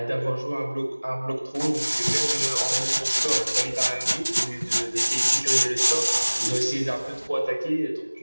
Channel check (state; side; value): inverted; both; correlation -1.00